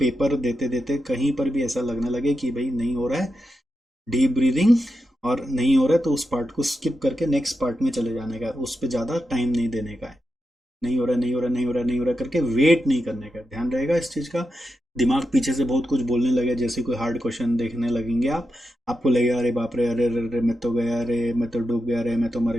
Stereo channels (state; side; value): normal; both; correlation 0.88